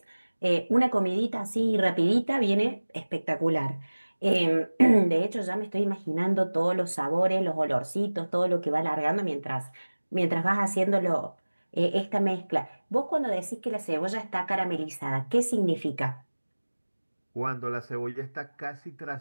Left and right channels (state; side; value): inverted; both; correlation -1.00